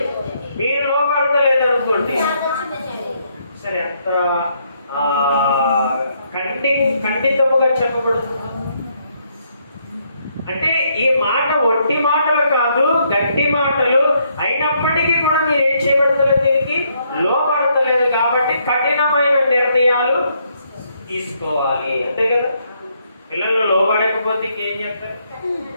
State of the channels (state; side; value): inverted; both; correlation -0.73